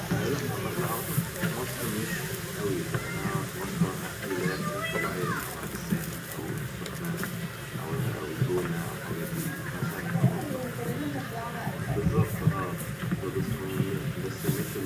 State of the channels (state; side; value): identical; both; correlation 1.00